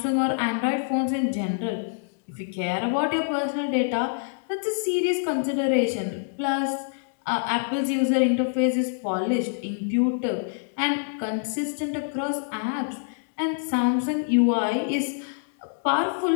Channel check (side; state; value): right; silent; digital silence